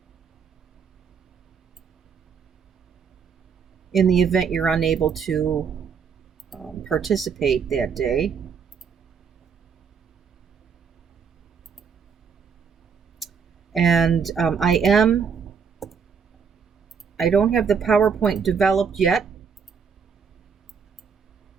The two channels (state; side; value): quieter; left; 6.4 dB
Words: in the event you're unable to participate that day. And I don't have the PowerPoint developed yet,